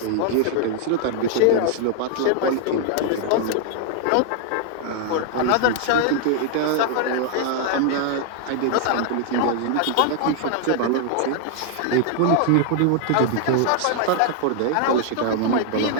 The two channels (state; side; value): different; both; correlation 0.00